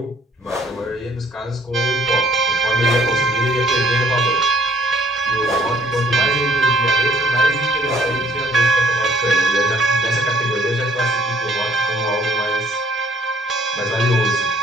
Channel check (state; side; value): normal; both; correlation 0.62